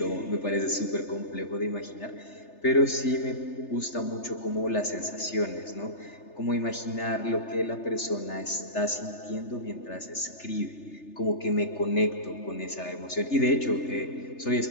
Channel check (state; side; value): late; right; 3.3 ms